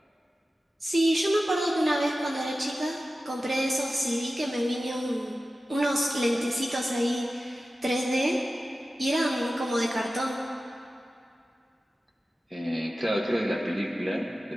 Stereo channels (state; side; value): normal; both; correlation 0.95